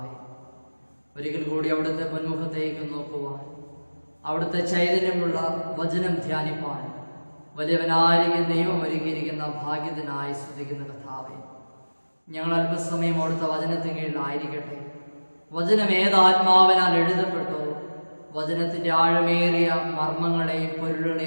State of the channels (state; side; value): inverted; both; correlation -1.00